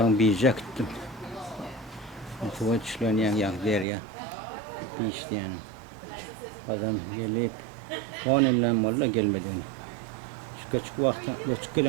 Biyic'e gittim. Tuva çişlerini yani der ya. Biyic'ti yani. Adam gelip 10 yıldan valla gelmedi. Şu küçük vakti, küçük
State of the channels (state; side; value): drops out; left; at 3.9 s